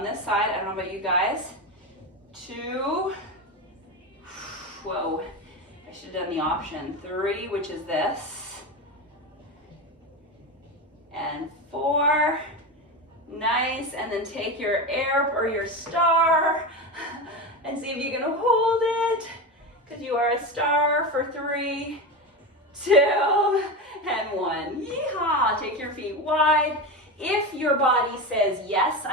this side. I don't know about you guys. 2, whoa, I should have done the option. 3, which is this. And 4, nice, and then take your air or your star and see if you can hold it, because you are a star for 3, 2, and 1. Yeehaw! Take your feet wide. If your body says, yes,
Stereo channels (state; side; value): normal; both; correlation 0.19